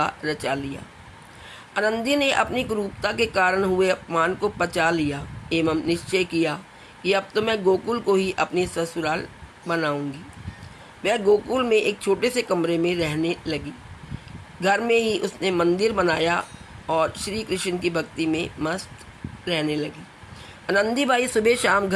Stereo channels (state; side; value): identical; both; correlation 1.00